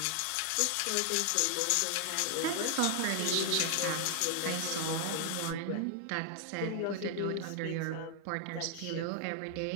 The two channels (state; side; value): different; both; correlation 0.00